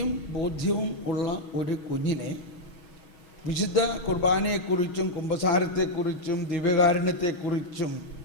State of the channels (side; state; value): right; late; 6.2 ms